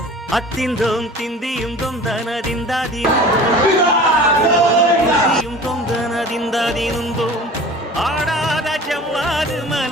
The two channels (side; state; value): both; normal; correlation 0.41